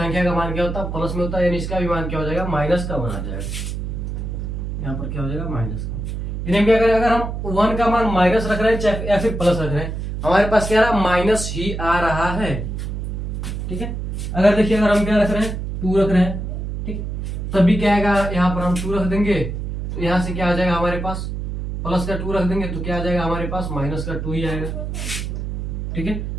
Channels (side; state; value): right; noise; hum, 4 dB below the sound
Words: का मान क्या होता है, प्लस में होता है, यानी इसका भी मान क्या हो जाएगा, माइनस का 1 आ जाएगा। यहाँ पर क्या हो जाएगा, माइनस का। यानी क्या करें, अगर हम 1 का मान माइनस रख रहे हैं चाहे या फिर प्लस रख रहे हैं, हमारे पास क्या रहा, माइनस ही आ रहा है, ठीक है। अगर देखिए अगर हम क्या रख रहे हैं, 2 रख रहे हैं, ठीक, तभी क्या आएगा, यहाँ पर हम 2 रख देंगे तो यहाँ से क्या आ जाएगा हमारे पास, प्लस का 2 रख देंगे तो क्या आ जाएगा हमारे पास, माइनस का 2 ही आएगा, ठीक है।